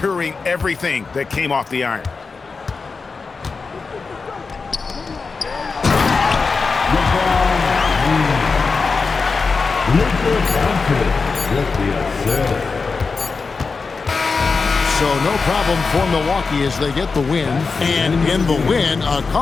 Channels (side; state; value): right; quieter; 4.6 dB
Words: everything that came off the iron. So no problem for Milwaukee as they get the win. And in the win, a